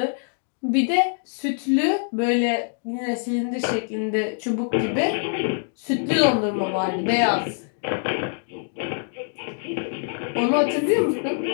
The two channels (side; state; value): right; silent; 62 dB below the other